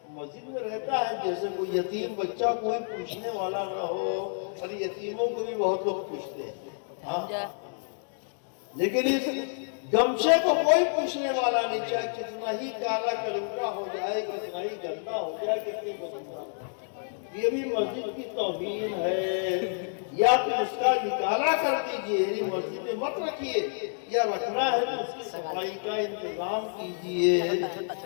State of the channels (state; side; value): silent; right; digital silence